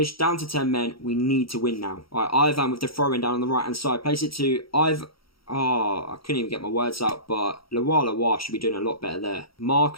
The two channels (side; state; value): right; late; 0.75 ms